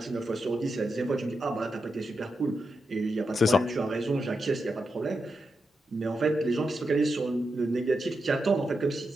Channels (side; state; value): both; normal; correlation 0.87